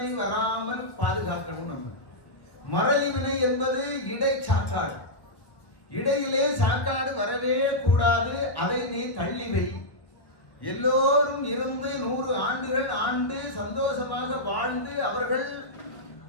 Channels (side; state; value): right; late; 1.3 ms